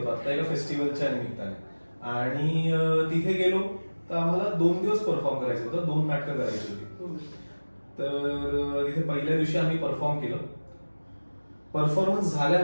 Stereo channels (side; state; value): both; inverted; correlation -1.00